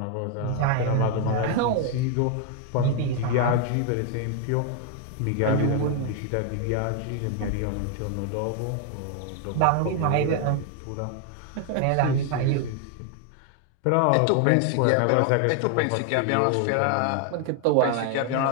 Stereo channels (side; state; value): both; different; correlation 0.00